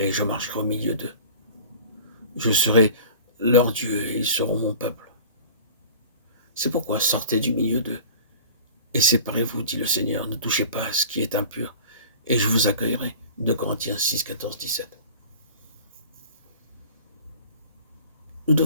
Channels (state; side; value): inverted; both; correlation -0.42